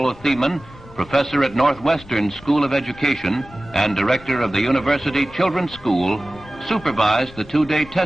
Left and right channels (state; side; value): noise; left; rumble, 21 dB below the sound